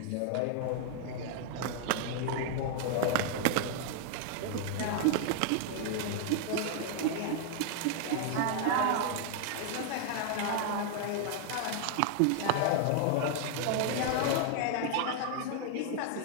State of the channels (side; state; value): both; different; correlation 0.00